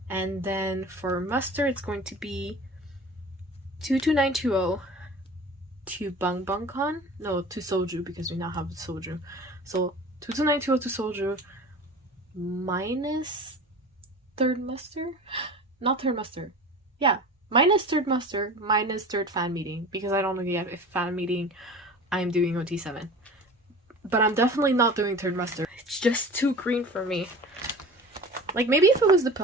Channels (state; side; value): normal; both; correlation 0.38